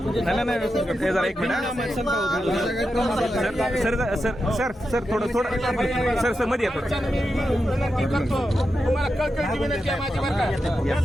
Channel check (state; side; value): normal; both; correlation 0.88